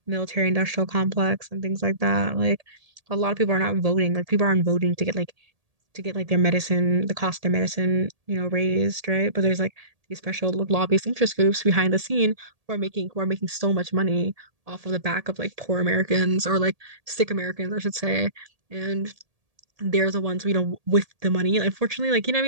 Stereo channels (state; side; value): late; left; 1.8 ms